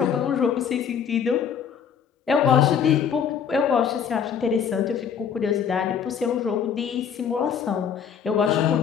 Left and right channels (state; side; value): quieter; right; 7.6 dB